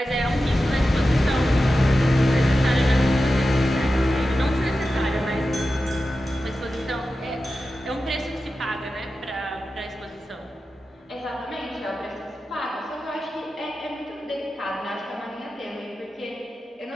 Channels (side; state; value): both; normal; correlation 0.92